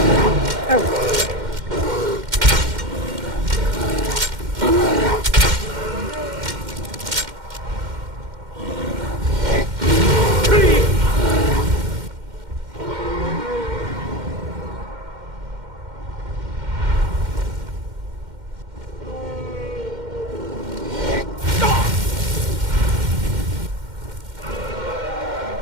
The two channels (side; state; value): left; late; 2.1 ms